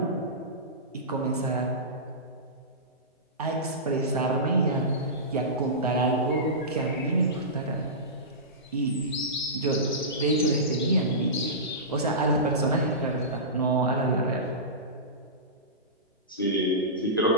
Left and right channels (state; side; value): normal; both; correlation -0.20